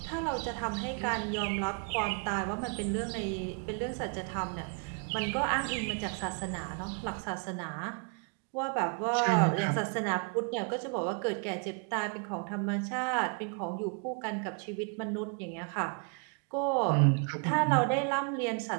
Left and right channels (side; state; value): left; quieter; 38.3 dB